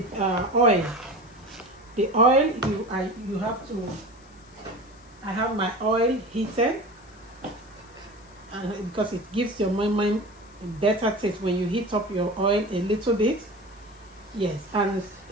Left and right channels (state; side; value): noise; left; hiss, 28 dB below the sound